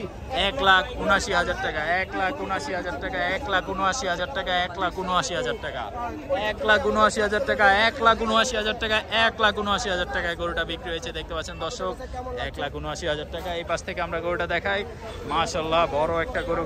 1,79,000 টাকা, 1,79,000 টাকা, 1,79,000 টাকা, 1,79,000 টাকা, 1,79,000 টাকা, 1,79,000 টাকা, 1,79,000 টাকায় গরুটা বিক্রি হয়েছে। দেখতে পাচ্ছেন দর্শক, 1,79,000 টাকা। এই পাশ থেকে আমরা গরুটা দেখাই। মাশাআল্লাহ, বড় একটা গরু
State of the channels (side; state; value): both; identical; correlation 1.00